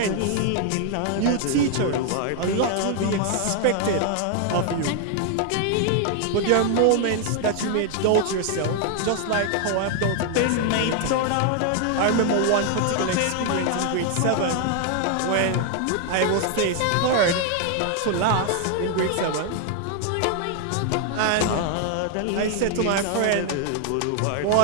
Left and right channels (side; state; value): both; different; correlation 0.00